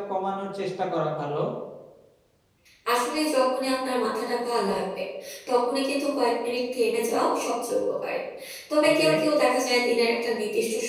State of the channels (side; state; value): both; identical; correlation 1.00